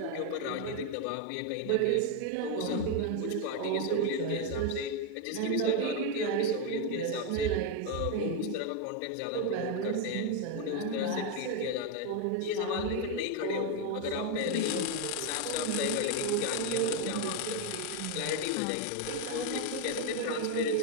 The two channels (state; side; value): different; both; correlation 0.01